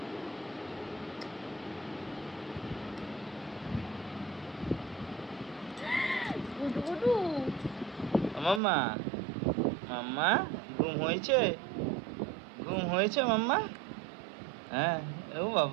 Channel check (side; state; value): left; drops out; at 8.6 s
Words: গুডু গুডু। মাম্মা, মাম্মা ঘুম হয়েছে? ঘুম হয়েছে মাম্মা? হ্যাঁ। ও